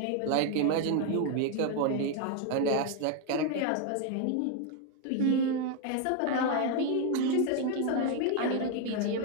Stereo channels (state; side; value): different; both; correlation 0.01